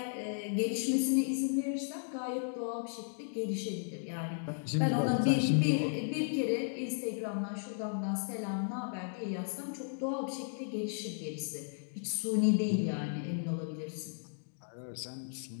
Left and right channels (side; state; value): right; silent; digital silence